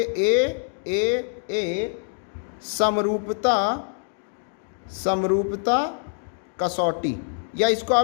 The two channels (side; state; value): right; silent; 59 dB below the other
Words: ए समरूपता कसौटी, या इसको